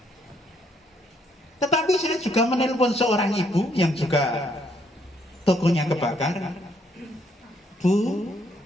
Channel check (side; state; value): both; normal; correlation 0.70